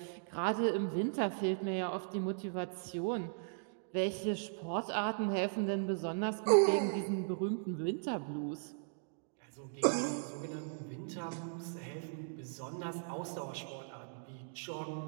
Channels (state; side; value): silent; left; digital silence